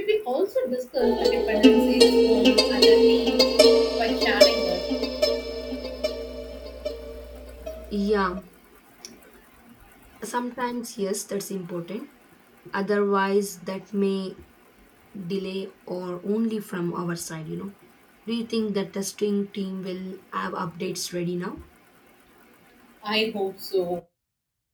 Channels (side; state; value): both; identical; correlation 1.00